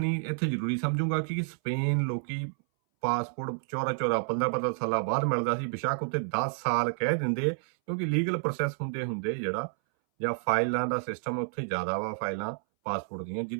ਇੱਥੇ ਜ਼ਰੂਰੀ ਸਮਝੂੰਗਾ ਕਿ ਸਪੇਨ ਲੋਕੀ ਪਾਸਪੋਰਟ 14 15 ਸਾਲਾਂ ਬਾਅਦ ਮਿਲਦਾ ਸੀ, ਬੇਸ਼ੱਕ ਉੱਤੇ 10 ਸਾਲ ਕਹਿ ਦਿੰਦੇ, ਕਿਉਂਕਿ ਲੀਗਲ ਪ੍ਰੋਸੈਸ ਹੁੰਦੇ ਜਿਹੜਾ ਜਾਂ ਫਾਈਲਾਂ ਦਾ ਸਿਸਟਮ ਉੱਥੇ ਜ਼ਿਆਦਾ ਵਾ ਫਾਈਲਾਂ ਪਾਸਪੋਰਟ ਦੀਆਂ,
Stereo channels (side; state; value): left; silent; 58 dB below the other